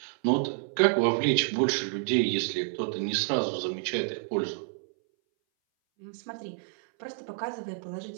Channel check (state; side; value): silent; left; 59 dB below the other